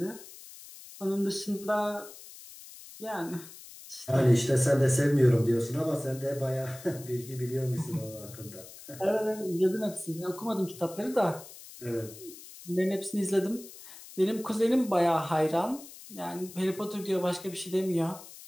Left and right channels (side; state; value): left; noise; hiss, 17 dB below the sound